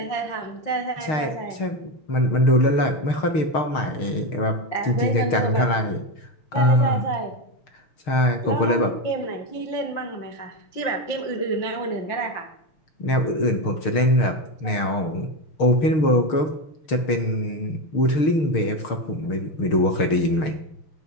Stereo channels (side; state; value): right; late; 6.5 ms